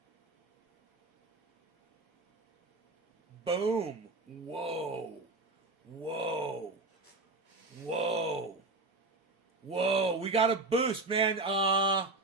Boom. Whoa. Whoa. Whoa. Whoa. We got a boost, man.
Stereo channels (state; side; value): quieter; left; 3.2 dB